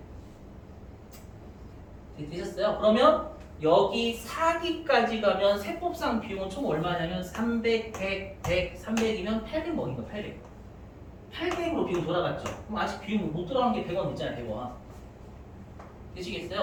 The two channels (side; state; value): both; identical; correlation 1.00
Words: 되셨어요? 그러면 여기 4기까지 가면 세법상 비용은 총 얼마냐면 300, 100, 100, 300이면 800 먹인 거예요. 800. 800으로 비용 돌아갔죠. 그럼 아직 비용 못 들어간 게 100원 있잖아요. 100원.